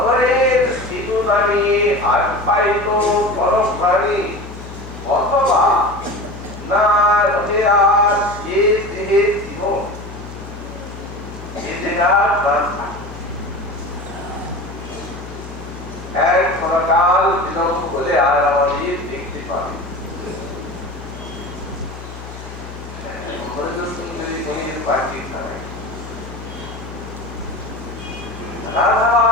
সিঁদুর রানী আর পাইত পরশ ভারী, অথবা না রহে আর এ দেহে জীবন, এ দেহার প্রাণ এক ক্ষণকাল বিলম্ব হলে আর আমাদের দেখতে পাবে। সুন্দরী মনির বাকি ছাড়াই রাধা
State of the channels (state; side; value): noise; left; hum, 13 dB below the sound